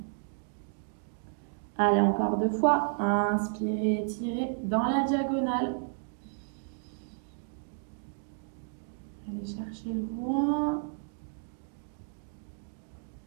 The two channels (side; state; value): left; silent; digital silence